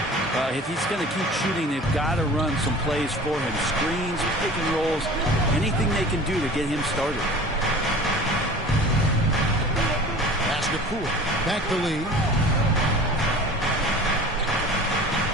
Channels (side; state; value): both; normal; correlation 0.41